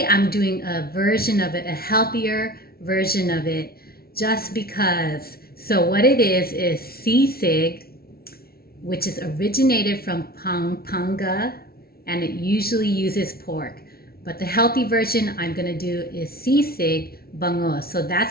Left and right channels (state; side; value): late; right; 0.44 ms